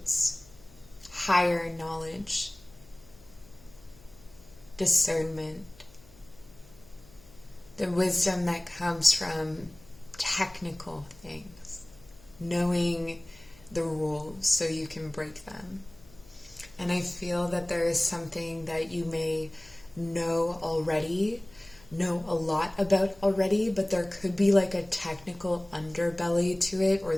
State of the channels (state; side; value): noise; left; hum, 25 dB below the sound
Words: higher knowledge, discernment, the wisdom that comes from technical things, knowing the rules so you can break them. And I feel that there is something that you may know a lot about already, but there could be like a technical underbelly to it, or